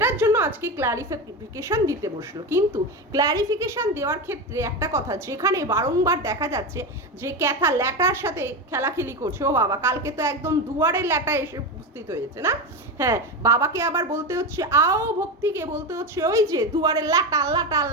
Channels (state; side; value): normal; both; correlation 0.18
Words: জন্য আজকে ক্ল্যারিফিকেশন দিতে বসলো। কিন্তু ক্ল্যারিফিকেশন দেওয়ার ক্ষেত্রে একটা কথা, যেখানে বারংবার দেখা যাচ্ছে যে ক্যাথা ল্যাটার সাথে খেলাখেলি করছে, ও বাবা কালকে তো একদম দুয়ারে ল্যাটা এসে উপস্থিত হয়েছে না, হ্যাঁ, বাবাকে আবার বলতে হচ্ছে আও, ভক্তিকে বলতে হচ্ছে ওই যে দুয়ারে ল্যাটা ল্যাটা